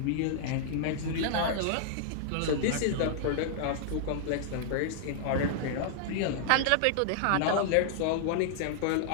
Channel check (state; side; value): different; both; correlation -0.01